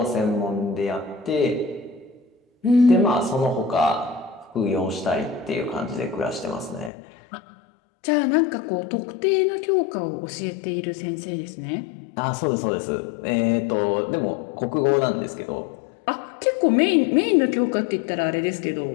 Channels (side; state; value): right; drops out; at 6.9 s